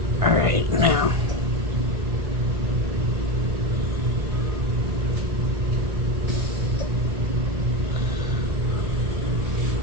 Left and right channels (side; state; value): left; late; 1.6 ms